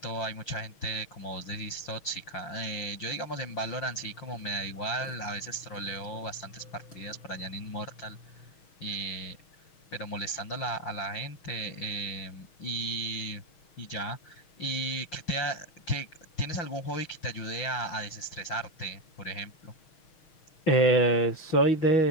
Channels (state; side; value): late; right; 6.3 ms